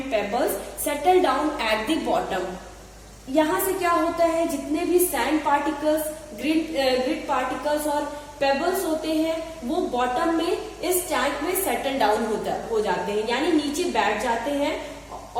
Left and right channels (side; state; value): both; identical; correlation 1.00